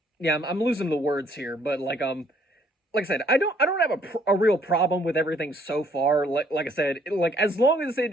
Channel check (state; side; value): normal; both; correlation 0.64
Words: yeah, I'm losing the words here, but like I said, I don't have a real problem with everything so far. Like I said, like as long as